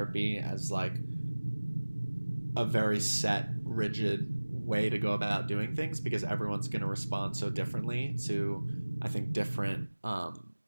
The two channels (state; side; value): inverted; both; correlation -1.00